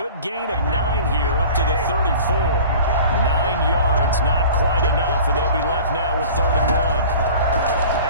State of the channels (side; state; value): both; inverted; correlation -0.43